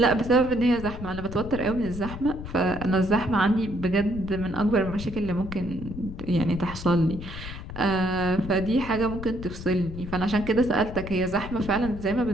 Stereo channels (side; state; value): left; noise; rumble, 10 dB below the sound